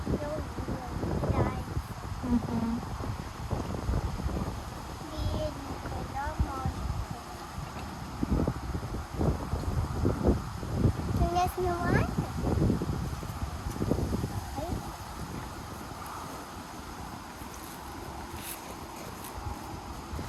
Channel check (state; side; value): identical; both; correlation 1.00